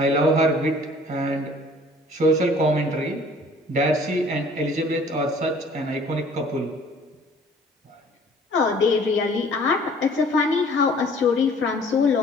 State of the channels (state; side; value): normal; both; correlation 0.53